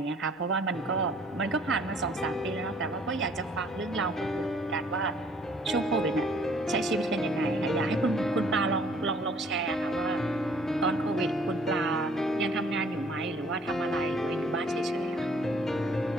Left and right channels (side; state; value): both; normal; correlation 0.59